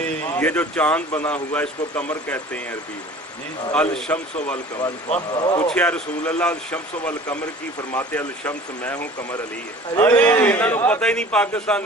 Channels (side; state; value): both; normal; correlation 0.44